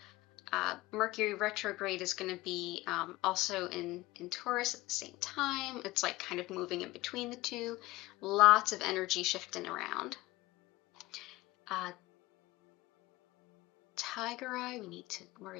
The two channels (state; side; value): quieter; right; 19.2 dB